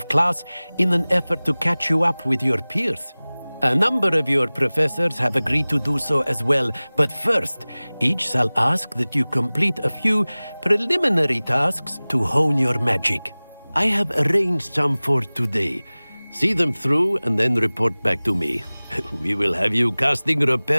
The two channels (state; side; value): inverted; both; correlation -1.00